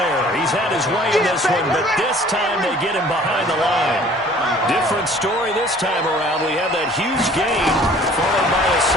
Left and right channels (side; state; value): both; normal; correlation 0.52